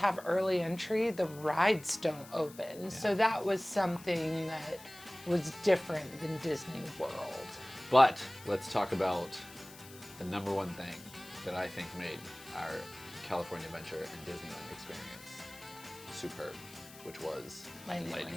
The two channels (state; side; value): noise; left; hiss, 18 dB below the sound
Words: early entry, the rides don't open. So that was something that was different than Disney World. But let's talk about the number one thing that I think made our California Adventure and Disneyland experience superb, which was Lightning Lightning